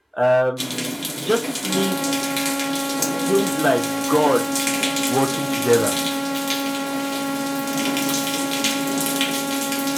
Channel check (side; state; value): both; identical; correlation 1.00